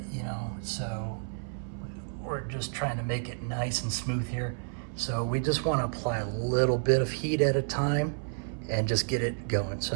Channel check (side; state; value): left; silent; 57 dB below the other